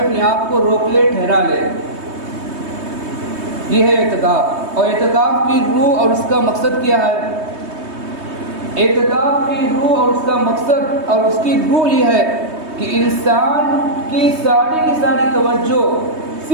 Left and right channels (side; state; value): left; late; 3.2 ms